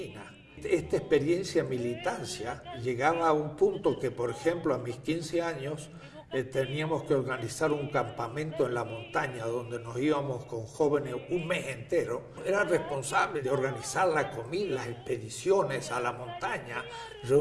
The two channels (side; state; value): both; identical; correlation 1.00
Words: Esta experiencia de militancia llegaba a un punto que, por ejemplo, a mis 15 años teníamos que organizar un campamento en la montaña donde nos íbamos con jóvenes un mes entero. Era responsable de organizar la comida, las expediciones a la montaña,